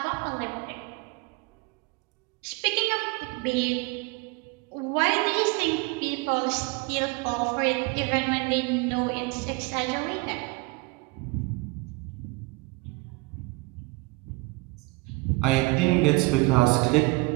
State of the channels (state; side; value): quieter; left; 24.9 dB